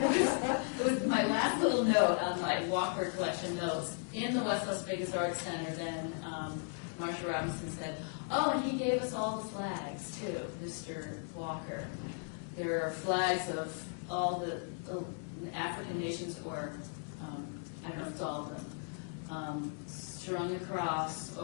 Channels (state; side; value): silent; right; 54 dB below the other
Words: was my last little note on my Walker collection notes. In the West Las Vegas Arts Center, then Marsha Robinson said, oh, and he gave us all the flags, too, Mr. Walker. There are flags of all the African nations, or I don't know if it's all of them, strung across